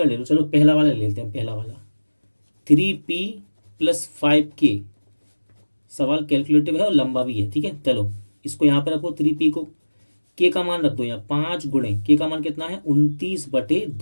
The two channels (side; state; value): both; inverted; correlation -1.00